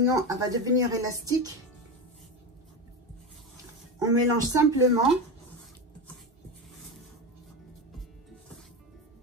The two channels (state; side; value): normal; both; correlation 0.19